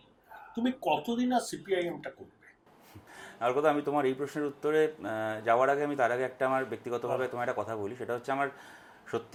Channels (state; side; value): identical; both; correlation 1.00